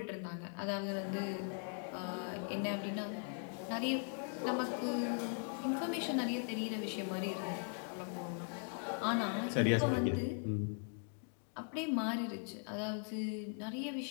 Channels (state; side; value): silent; right; 51 dB below the other